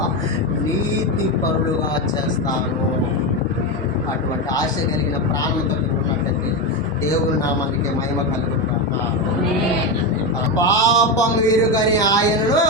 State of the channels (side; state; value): both; normal; correlation 0.13